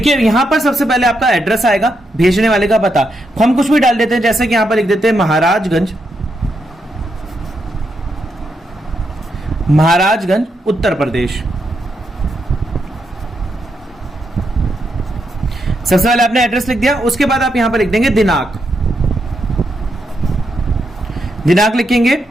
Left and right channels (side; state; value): both; normal; correlation 0.81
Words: यहां पर सबसे पहले आपका एड्रेस आएगा, भेजने वाले का पता, हम कुछ भी डाल देते हैं, जैसे कि यहां पर लिख देते हैं महाराजगंज उत्तर प्रदेश। सबसे पहले आपने एड्रेस लिख दिया, उसके बाद आप यहां पर लिख देंगे दिनांक, दिनांक लिखेंगे